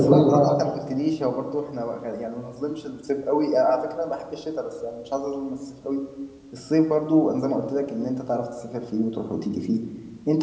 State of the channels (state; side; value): identical; both; correlation 1.00